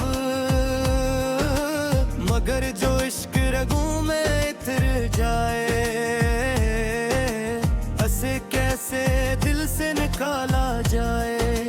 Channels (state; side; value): identical; both; correlation 1.00